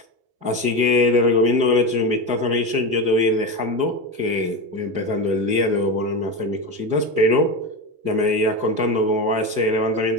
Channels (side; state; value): left; late; 4.8 ms